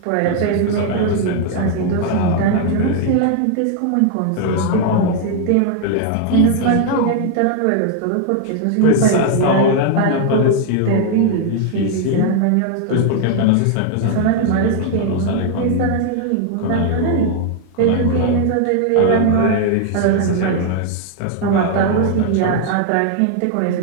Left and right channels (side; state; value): both; different; correlation 0.00